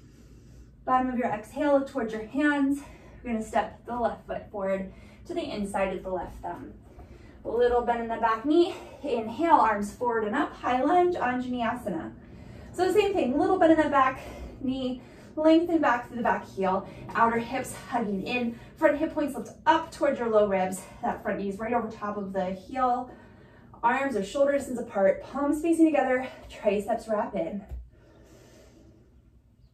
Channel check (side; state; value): both; identical; correlation 1.00